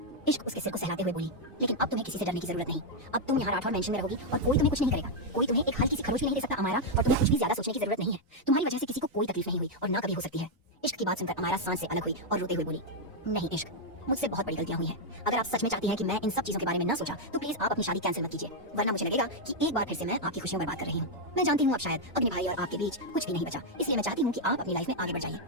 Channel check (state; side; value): normal; both; correlation 0.00